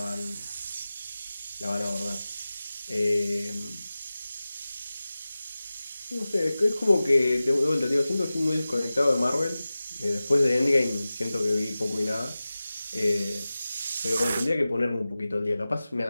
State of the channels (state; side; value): inverted; both; correlation -0.96